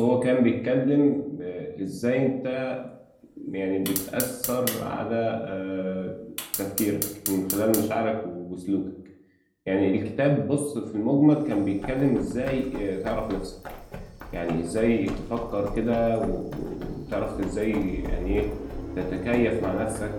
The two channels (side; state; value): both; identical; correlation 1.00